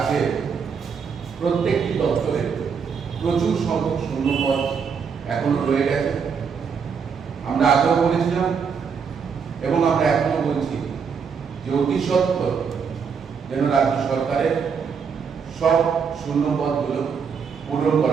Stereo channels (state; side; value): quieter; left; 6.2 dB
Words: প্রত্যেকটি দপ্তরে প্রচুর সংখ্যক শূন্যপদ এখনো রয়ে গেছে। আমরা আগেও বলেছিলাম এবং আমরা এখনো বলছি যে অতি সত্বর যেন রাজ্য সরকারের সব শূন্যপদগুলো পূরণ